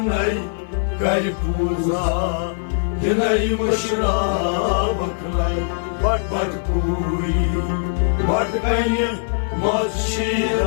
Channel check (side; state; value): right; silent; 59 dB below the other